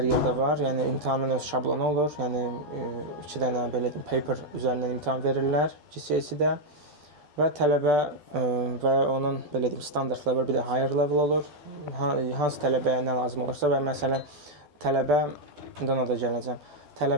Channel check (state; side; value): late; left; 12 ms